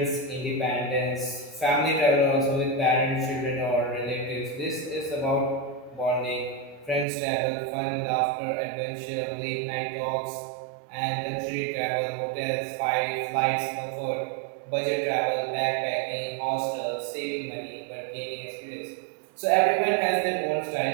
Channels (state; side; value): drops out; left; at 7.1 s